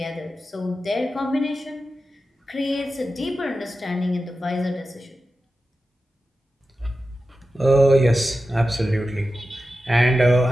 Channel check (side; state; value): both; normal; correlation 0.92